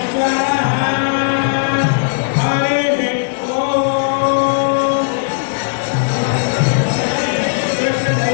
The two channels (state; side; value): silent; right; digital silence